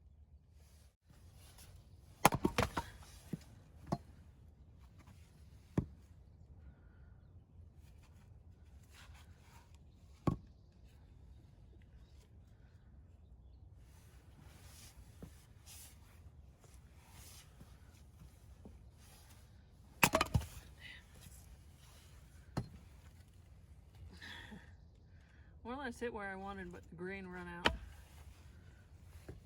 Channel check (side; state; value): both; identical; correlation 1.00